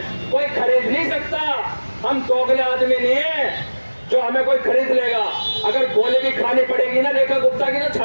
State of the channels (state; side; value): inverted; both; correlation -1.00